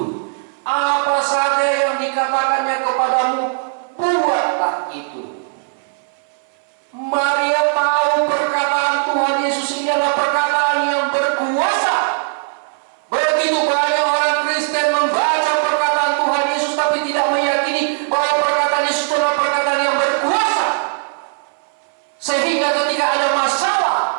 Apa saja yang dikatakannya kepadamu, buatlah itu. Maria tahu perkataan Tuhan Yesus ini adalah perkataan yang berkuasa. Begitu banyak orang Kristen membaca perkataan Tuhan Yesus tapi tidak meyakini bahwa perkataan Yesus adalah perkataan yang berkuasa. Sehingga ketika ada masalah,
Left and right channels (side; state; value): left; silent; 64 dB below the other